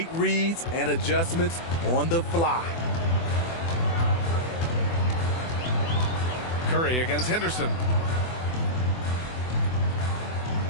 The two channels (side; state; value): right; late; 24 ms